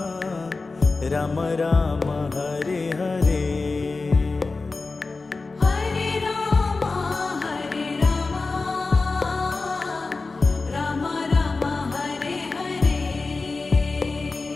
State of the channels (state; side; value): quieter; right; 3.8 dB